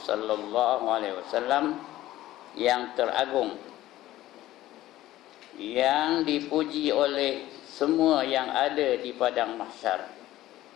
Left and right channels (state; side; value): quieter; right; 15.2 dB